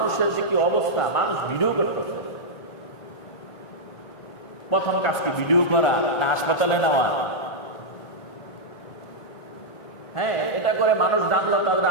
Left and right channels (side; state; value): right; late; 1.5 ms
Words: যে কি অবস্থা, মানুষ ভিডিও করতেছে। প্রথম কাজ কি ভিডিও করা না হাসপাতালে নেওয়া? হ্যাঁ, এটা করে মানুষ জানলো তাদের